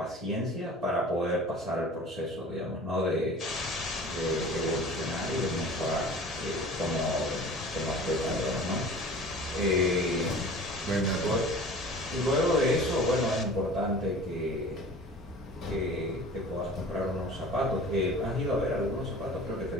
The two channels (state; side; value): normal; both; correlation 0.42